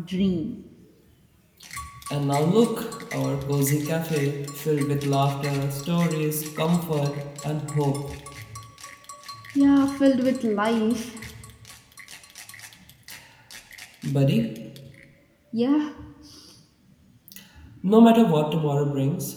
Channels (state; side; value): identical; both; correlation 1.00